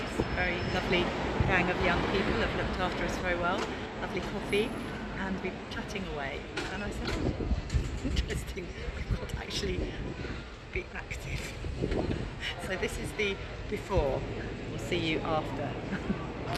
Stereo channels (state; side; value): identical; both; correlation 1.00